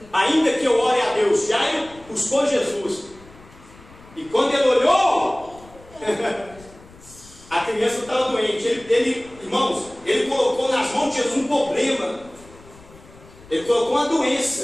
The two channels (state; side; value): noise; left; rumble, 23 dB below the sound